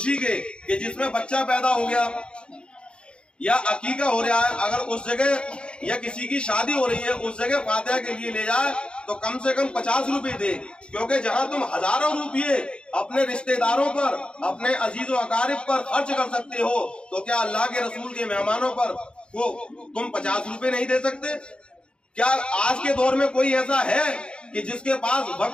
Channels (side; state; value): right; late; 0.055 ms